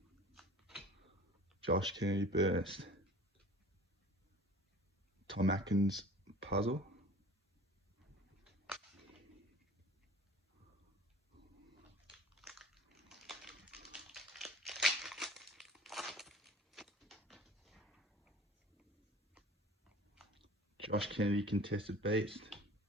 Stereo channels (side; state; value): both; normal; correlation 0.44